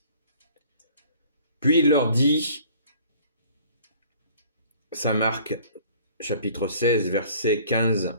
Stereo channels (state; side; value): inverted; both; correlation -0.52